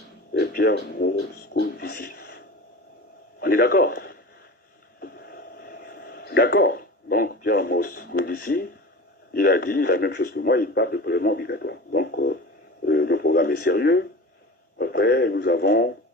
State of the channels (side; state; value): both; normal; correlation 0.34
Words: Pierre Moscovici. On est d'accord? D'accord. Donc, Pierre Moscovici, il a dit la même chose que moi, il parle de prélèvement obligatoire. Donc, et sérieux. Après, nous avons